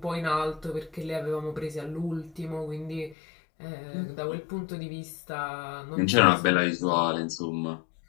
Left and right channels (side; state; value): right; drops out; at 3.2 s